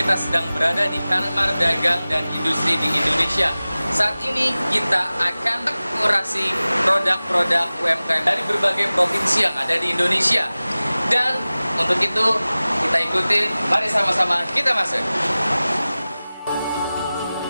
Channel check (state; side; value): inverted; both; correlation -0.97